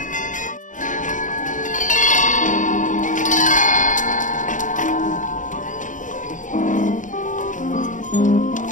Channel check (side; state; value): right; late; 0.37 ms